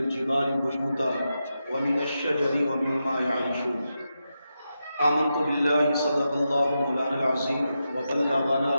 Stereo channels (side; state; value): both; inverted; correlation -0.88